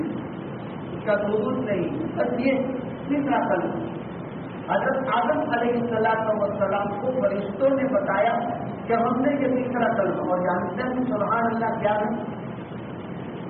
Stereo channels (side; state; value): both; identical; correlation 1.00